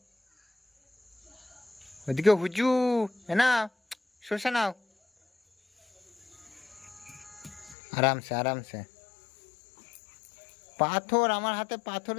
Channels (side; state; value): right; drops out; at 7.8 s